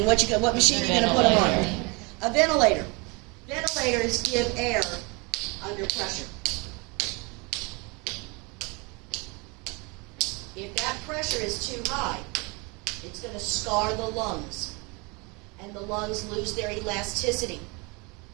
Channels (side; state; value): left; quieter; 29.1 dB